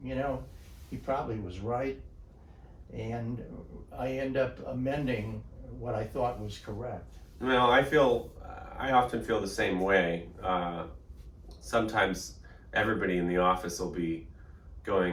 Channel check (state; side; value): identical; both; correlation 1.00